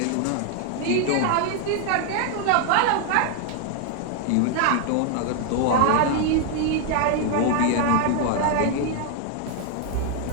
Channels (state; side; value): different; both; correlation 0.00